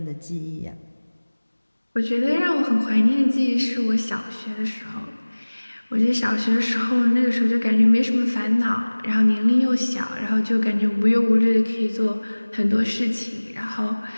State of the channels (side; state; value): both; inverted; correlation -1.00